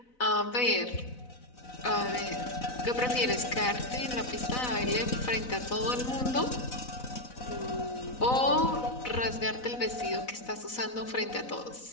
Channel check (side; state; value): right; late; 4.0 ms